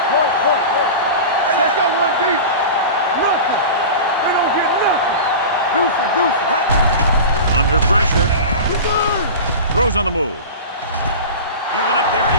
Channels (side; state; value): both; inverted; correlation -0.31